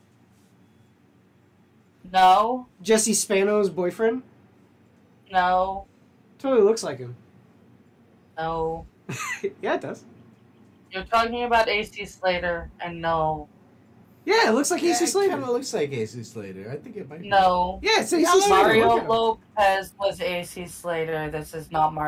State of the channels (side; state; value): both; identical; correlation 1.00